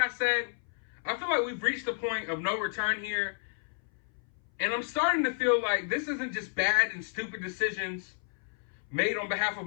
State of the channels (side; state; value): right; silent; 57 dB below the other